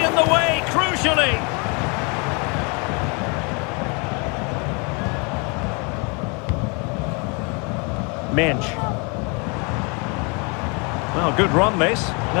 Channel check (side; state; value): right; quieter; 32.6 dB